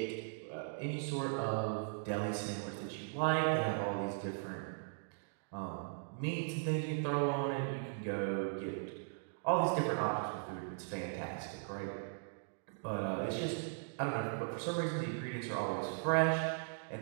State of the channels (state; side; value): silent; left; digital silence